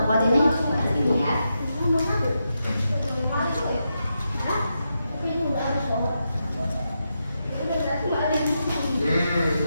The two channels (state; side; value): inverted; both; correlation -0.85